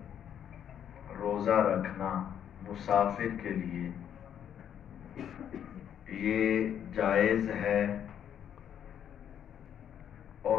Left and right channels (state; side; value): quieter; right; 9.3 dB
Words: روزہ رکھنا مسافر کے لیے یہ جائز ہے